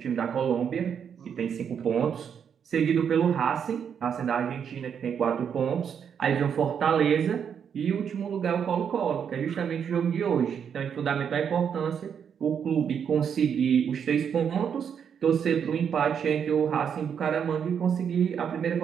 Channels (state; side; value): quieter; left; 7.7 dB